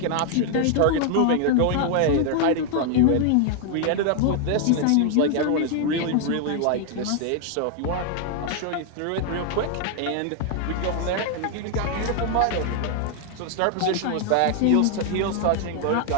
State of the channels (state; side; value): different; both; correlation 0.00